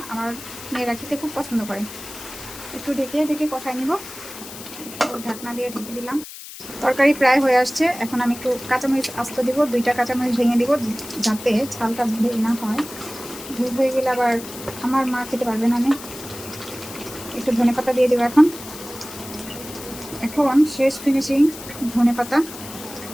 আমার মেয়েরা খেতে খুব পছন্দ করে। একটু ঢেকে কষাই নিব। ঢাকনা দিয়ে ঢেকে দিলাম। তরকারি প্রায় হয়ে আসছে। এখন আমি একটু কাঁচামরিচ আস্ত দিব, 2টা কাঁচামরিচ ভেঙে দিব, যাতে ঝালটা ভেঙে না হয়। ভেঙে হয়ে গেলে আবার আমার মা খেতে পারবে না। আমি একটু ধনেপাতা দিয়ে দেবো এখন শেষ ফিনিশিং ধনেপাতা।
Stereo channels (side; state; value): left; noise; hiss, 13 dB below the sound